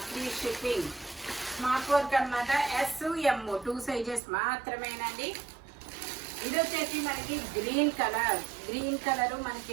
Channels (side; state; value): left; drops out; at 4.2 s